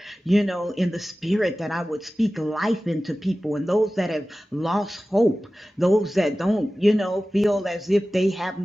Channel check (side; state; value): both; normal; correlation 0.96